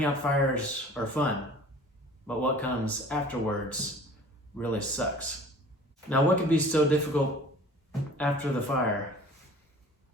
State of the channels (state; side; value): normal; both; correlation 0.46